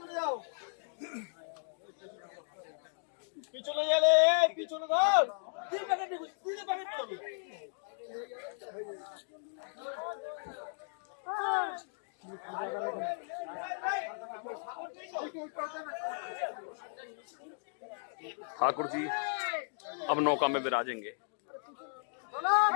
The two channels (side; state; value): right; silent; digital silence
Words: যাও, পিছনে গেলে পিছনে ধর। তুই প্যাকেট দিবি, তুই প্যাকেট দিবি। ठाकुर जी अब नौका में विराजेंगे।